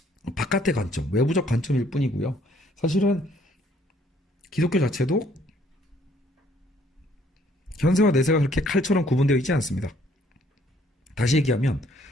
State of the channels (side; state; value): both; normal; correlation 0.64